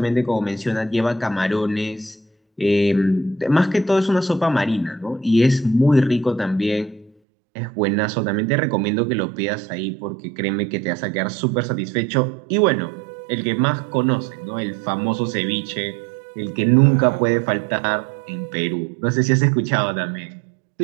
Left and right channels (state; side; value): drops out; left; at 7.1 s